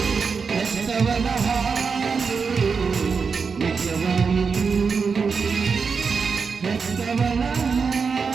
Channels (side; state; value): left; quieter; 5.4 dB